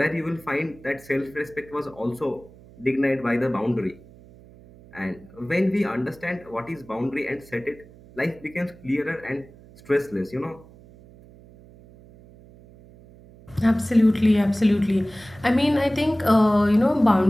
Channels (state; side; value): noise; right; hum, 23 dB below the sound